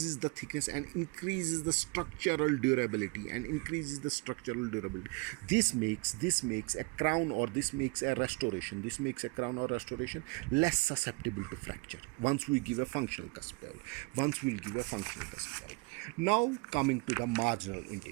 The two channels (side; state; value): left; quieter; 28.3 dB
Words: the thickness and increases the structural durability This makes a crown or restoration less susceptible to fracture once we give a functional cusp bevel. Now coming to the marginal